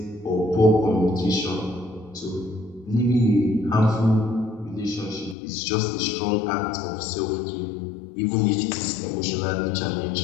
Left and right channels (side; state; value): right; drops out; at 5.4 s